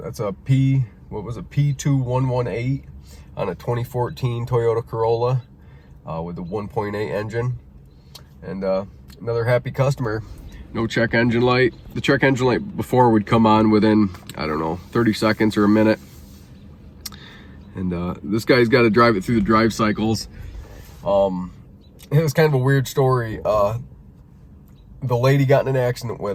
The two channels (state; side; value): identical; both; correlation 1.00